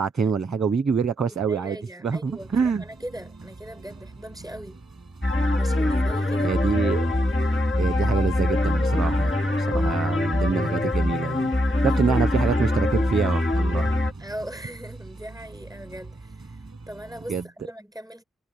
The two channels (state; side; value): normal; both; correlation 0.80